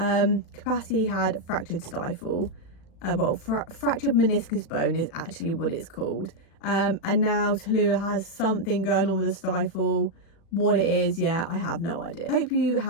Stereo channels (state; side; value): late; right; 36 ms